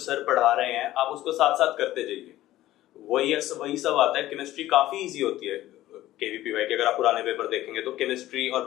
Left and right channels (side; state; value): right; quieter; 15.0 dB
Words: पढ़ा रहे हैं आप उसको साथ साथ करते जाइए। वही सब आता है। केमिस्ट्री काफी इजी होती है केवीपीवाई की। अगर आप पुराने पेपर देखेंगे तो केमिस्ट्री और